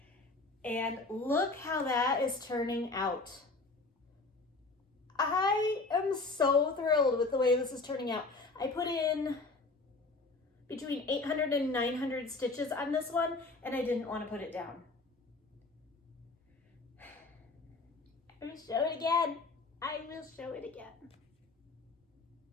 And look how that is turning out. I am so thrilled with the way this is turning out. I put in between 800 and 900 stitches on this one, and I didn't want to put it down. I will show it again. I will show it again.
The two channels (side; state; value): right; quieter; 3.6 dB